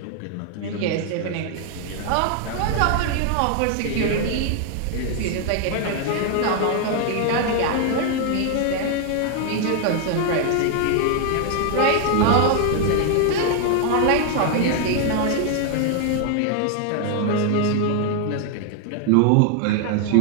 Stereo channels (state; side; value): different; both; correlation 0.00